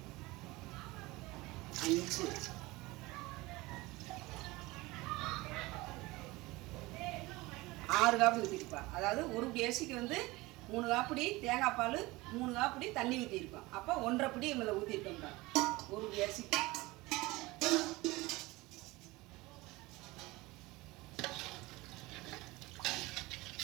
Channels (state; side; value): quieter; left; 21.3 dB